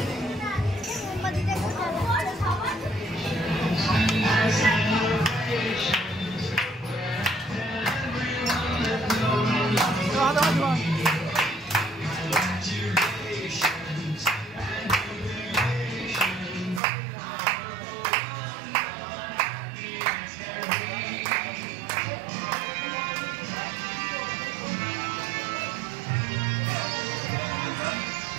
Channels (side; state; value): left; drops out; at 16.8 s